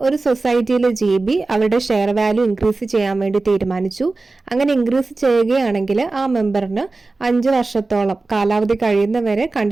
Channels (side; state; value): left; quieter; 3.5 dB